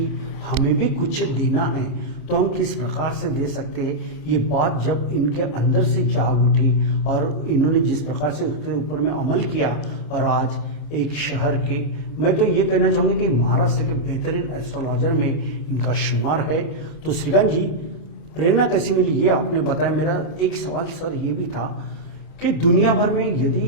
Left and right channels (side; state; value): right; late; 27 ms